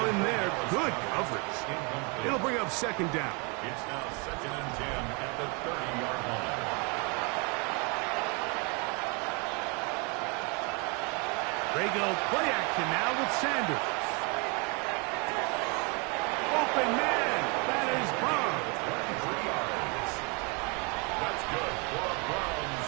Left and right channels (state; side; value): quieter; left; 32.0 dB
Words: in there. Good coverage. It'll bring up second down. It's now second and 10 at the 30-yard line. They go play action now with Sanders. Open man. That is Bond. 3 yards. That's good for a Browns